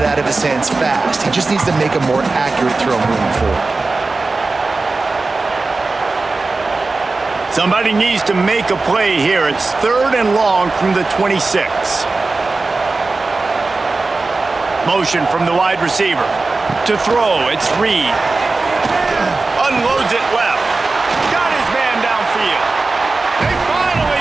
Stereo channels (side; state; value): left; quieter; 3.6 dB